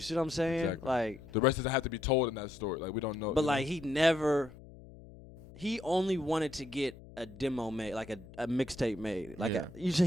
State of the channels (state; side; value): noise; left; hum, 19 dB below the sound